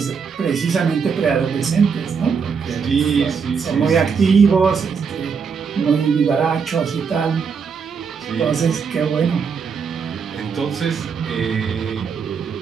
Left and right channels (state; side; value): quieter; left; 6.0 dB